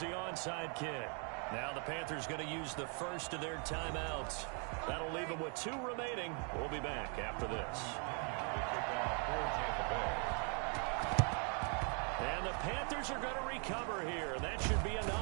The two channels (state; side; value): quieter; left; 38.9 dB